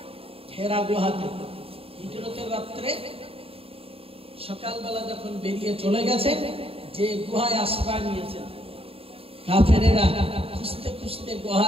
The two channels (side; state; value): left; late; 0.27 ms